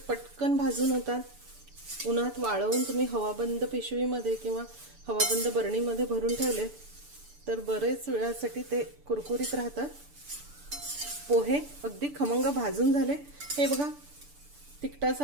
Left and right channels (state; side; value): late; left; 6.9 ms